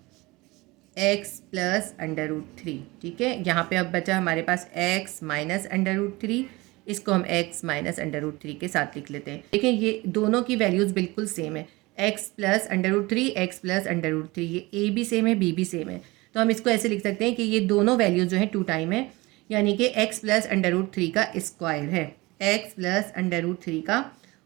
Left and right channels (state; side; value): quieter; left; 22.4 dB